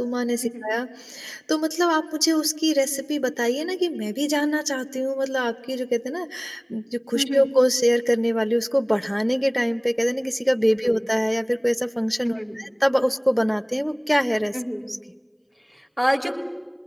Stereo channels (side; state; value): both; identical; correlation 1.00